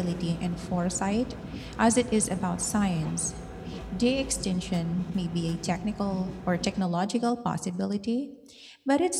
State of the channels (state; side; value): identical; both; correlation 1.00